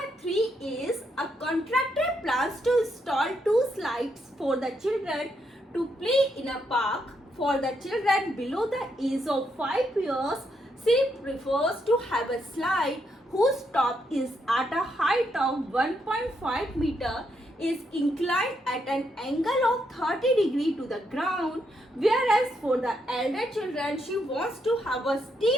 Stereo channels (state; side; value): normal; both; correlation 0.78